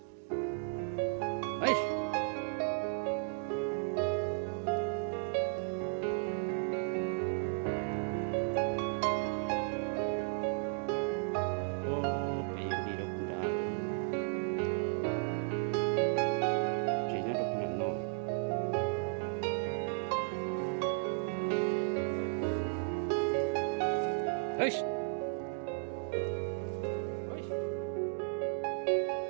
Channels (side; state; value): left; silent; digital silence